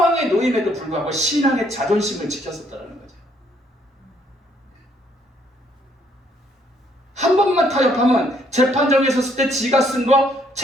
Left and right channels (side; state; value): both; normal; correlation 0.68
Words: 놓임에도 불구하고 신앙의 자존심을 지켰었다는 거죠. 한 번만 타협하면 재판정에 섰을 때 지가 쓴 거